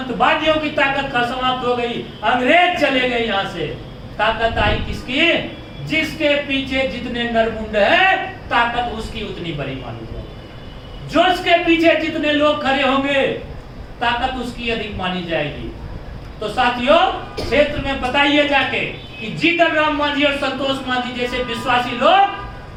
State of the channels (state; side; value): identical; both; correlation 1.00